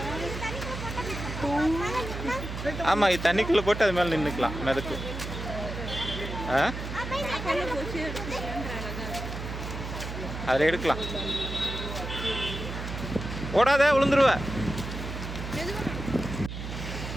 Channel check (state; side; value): noise; right; hum, 7 dB below the sound